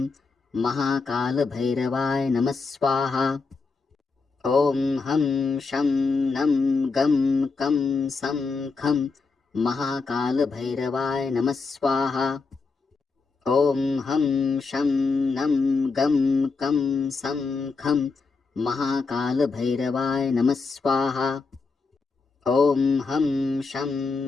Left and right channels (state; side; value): quieter; right; 4.4 dB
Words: महाकाल भैरवाय नमः स्वाहा। ओम हम शम नम गम कम सम खम महाकाल भैरवाय नमः स्वाहा। ओम हम शम नम गम कम सम खम महाकाल भैरवाय नमः स्वाहा। ओम हम शम